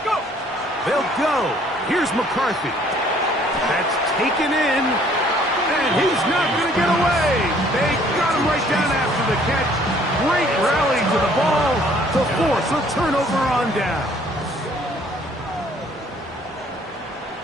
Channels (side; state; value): both; normal; correlation 0.59